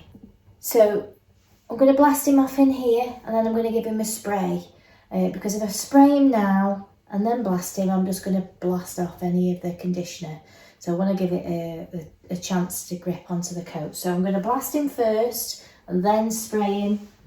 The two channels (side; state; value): both; identical; correlation 1.00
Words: So I'm going to blast him off in here, and then I'm going to give him a spray, because if I spray him now and then blast him, I'm just going to blast off any of the conditioner. So I want to give it a chance to grip onto the coat. So I'm going to blast him first and then spray him